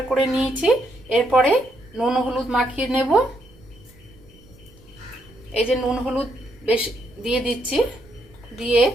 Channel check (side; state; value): right; noise; rumble, 26 dB below the sound